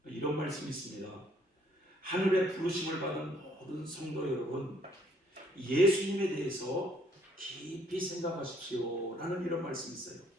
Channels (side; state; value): both; normal; correlation 0.65